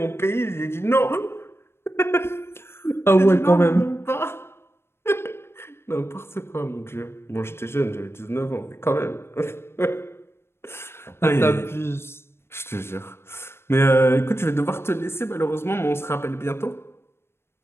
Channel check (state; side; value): late; right; 0.12 ms